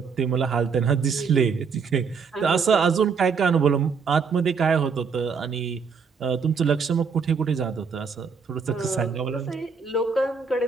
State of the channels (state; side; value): quieter; left; 5.6 dB